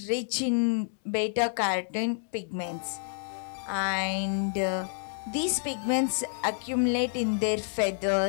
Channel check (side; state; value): right; silent; digital silence